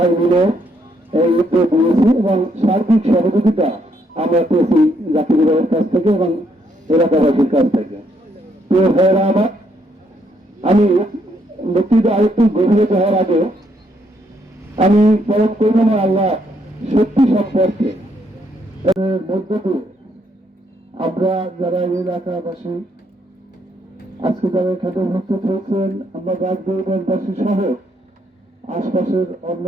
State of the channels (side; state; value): both; normal; correlation 0.73